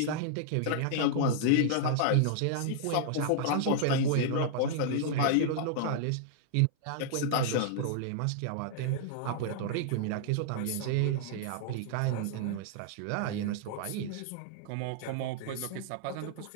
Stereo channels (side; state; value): both; different; correlation -0.01